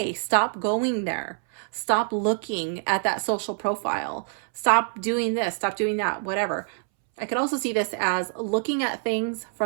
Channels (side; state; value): left; silent; 61 dB below the other